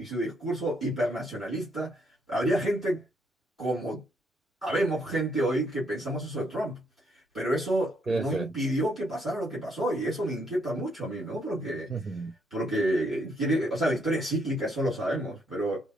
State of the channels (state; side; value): normal; both; correlation 0.72